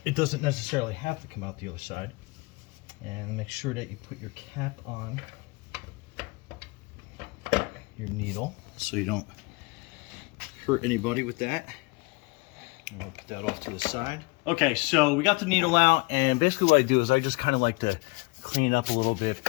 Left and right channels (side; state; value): right; quieter; 26.6 dB